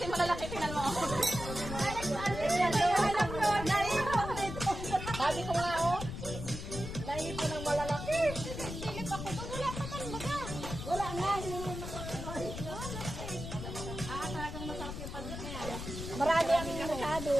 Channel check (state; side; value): noise; left; rumble, 7 dB below the sound